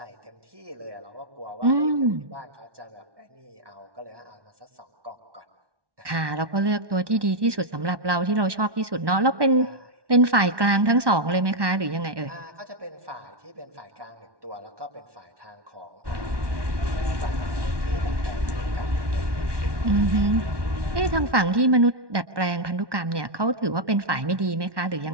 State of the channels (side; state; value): left; late; 1.2 ms